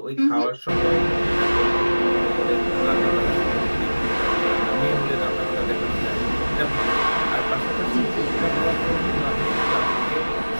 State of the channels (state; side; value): inverted; both; correlation -1.00